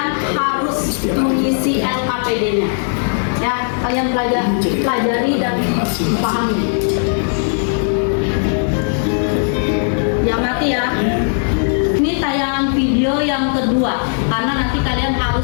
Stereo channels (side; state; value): right; silent; 66 dB below the other